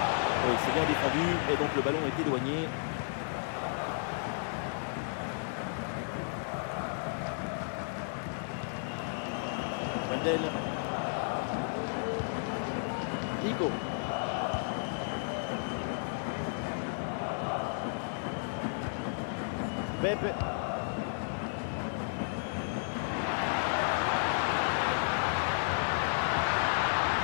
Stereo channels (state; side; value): silent; right; digital silence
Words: Oui, c'est bien défendu et donc le ballon est éloigné. Wendel. Nico. Pepe.